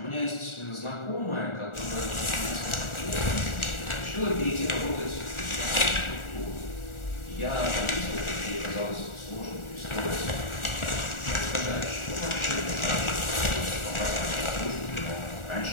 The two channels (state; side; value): late; right; 1.4 ms